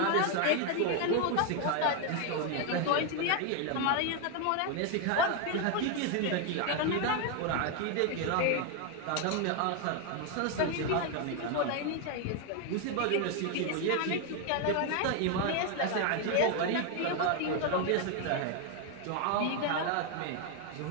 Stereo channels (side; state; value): both; different; correlation 0.01